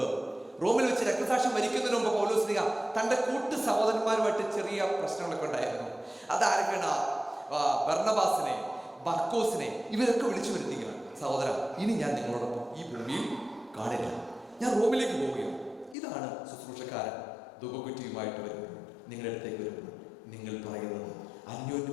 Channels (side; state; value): right; drops out; at 16.0 s